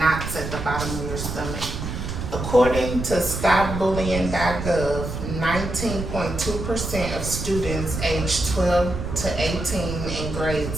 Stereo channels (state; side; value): noise; right; rumble, 5 dB below the sound